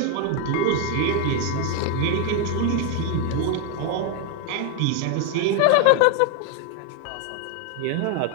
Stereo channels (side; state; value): both; different; correlation 0.01